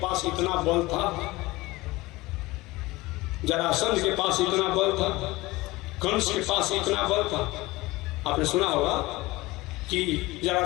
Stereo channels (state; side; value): quieter; right; 20.6 dB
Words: इतना बल था, जरासंध के पास इतना बल था, कंस के पास इतना बल था। आपने सुना होगा कि